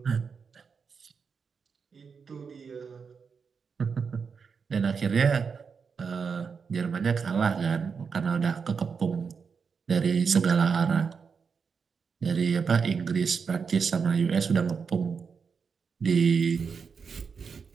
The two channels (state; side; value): quieter; left; 5.8 dB